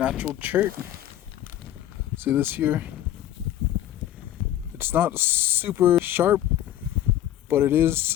chert. See this here? It's not super sharp, but it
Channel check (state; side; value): quieter; right; 12.4 dB